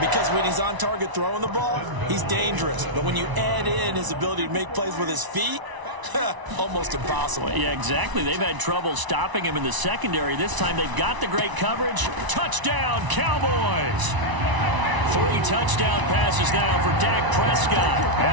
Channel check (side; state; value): left; late; 1.0 ms